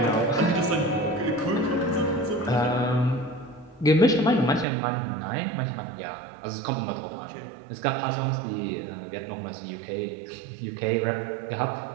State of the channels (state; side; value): drops out; left; at 4.7 s